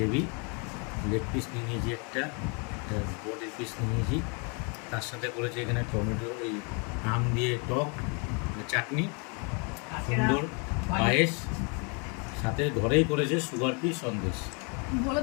লেগ পিস নিয়ে নিয়েছি একটা বডির পিস নিয়ে নিয়েছি। তার সাথে করেছে এখানে টমেটো, এই আম দিয়ে টক চাটনি, সুন্দর পায়েস, সাথে ঘরেই করেছে সুগার ফ্রি সন্দেশ। বলে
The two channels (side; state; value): right; quieter; 34.8 dB